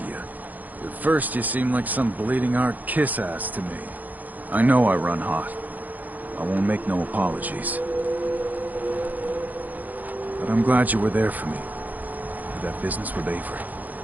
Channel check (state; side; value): late; left; 0.082 ms